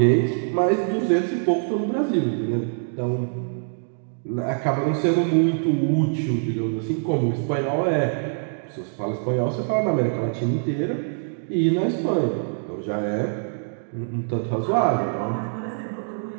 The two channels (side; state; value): left; silent; digital silence